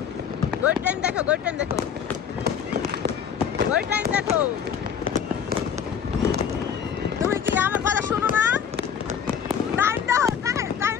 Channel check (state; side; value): quieter; right; 7.8 dB